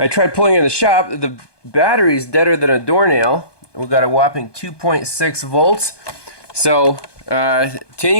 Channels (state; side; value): late; right; 1.2 ms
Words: tried pulling in the shop. The battery's deader than a doornail. We've got a whopping 2.6 volts. So to